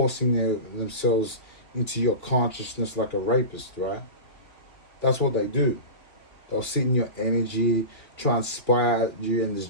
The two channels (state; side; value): late; right; 2.9 ms